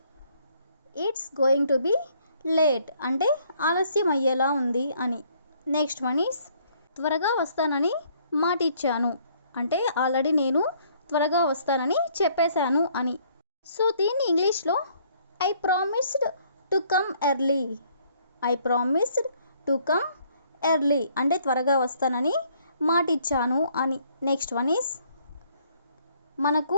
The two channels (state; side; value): inverted; both; correlation -0.64